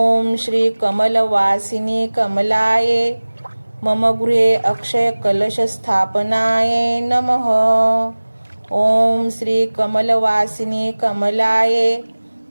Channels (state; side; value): inverted; both; correlation -1.00